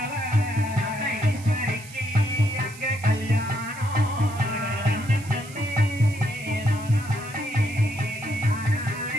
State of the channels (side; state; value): right; noise; hiss, 18 dB below the sound